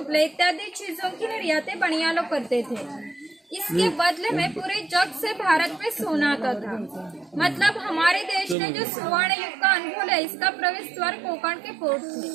इत्यादि चीजों की निर्यातें बनिया लोग करते थे। इसके बदले में पूरे जग से भारत में सोना आता था। मतलब हमारे देश ने जो स्वर्ण युग का अनुभव है, इसका प्रवेश द्वार कोंकण के पोर्ट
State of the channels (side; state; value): left; drops out; at 8.6 s